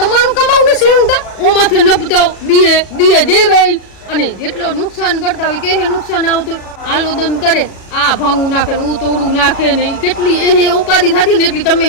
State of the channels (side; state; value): right; late; 37 ms